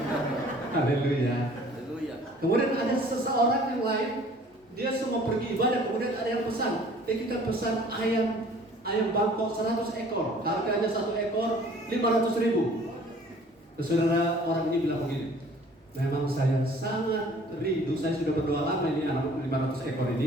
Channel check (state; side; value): normal; both; correlation 0.52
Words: Haleluya. Kemudian ada seseorang yang lain, dia semua pergi ibadah, kemudian ada yang pesan. Kita pesan ayam Bangkok 100 ekor. Harganya 1 ekor 500.000. Saudara, orang ini bilang begini, memang saya sangat rindu, saya sudah berdoa lama ini anak 500 ekor